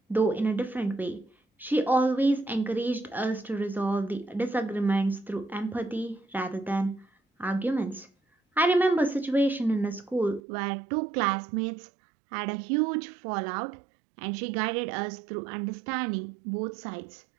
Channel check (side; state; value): left; drops out; at 10.4 s